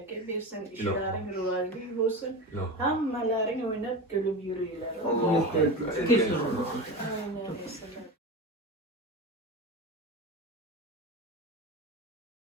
versin. İşlerin rivajlı olsun. Hammalaring oynab kulib yuringlar. Kesin. Aynen.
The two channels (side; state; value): both; normal; correlation 0.25